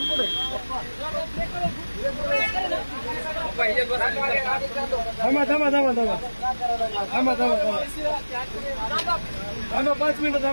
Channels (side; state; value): both; inverted; correlation -1.00